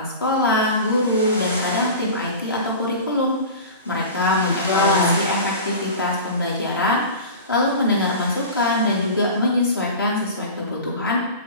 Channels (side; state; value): both; inverted; correlation -0.34